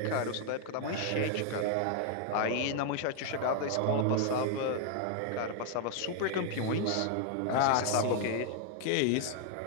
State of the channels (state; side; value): different; both; correlation 0.00